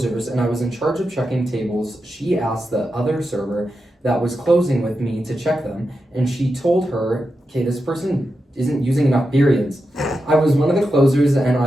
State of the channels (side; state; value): both; normal; correlation 0.89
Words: and I was in charge of checking tables. She asked the other server that was closing with me to check them, and she told her, okay, this person isn't using enough periods. I was one of the closers, and